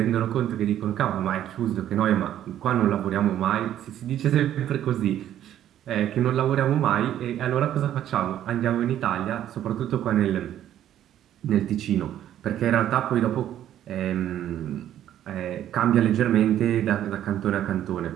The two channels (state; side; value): quieter; left; 11.4 dB